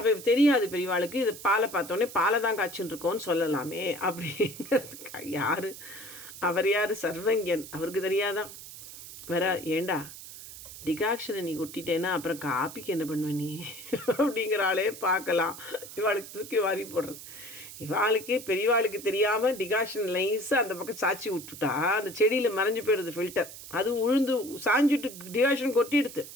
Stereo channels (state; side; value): noise; right; hiss, 14 dB below the sound